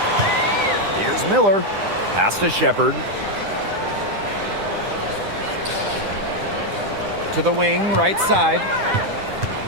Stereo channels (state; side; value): late; left; 10 ms